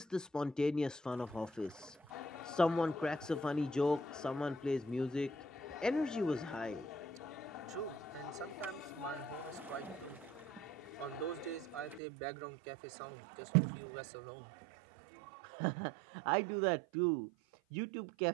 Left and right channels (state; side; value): drops out; left; at 12.0 s